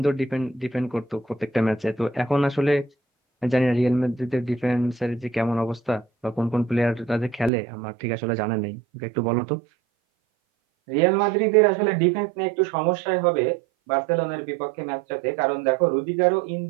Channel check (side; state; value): left; drops out; at 7.5 s